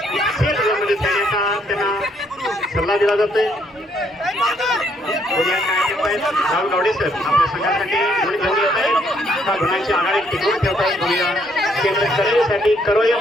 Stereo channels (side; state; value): both; normal; correlation 0.69